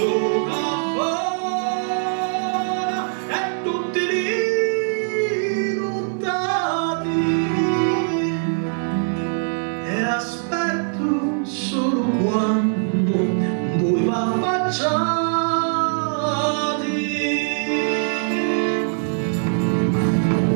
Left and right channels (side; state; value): left; silent; digital silence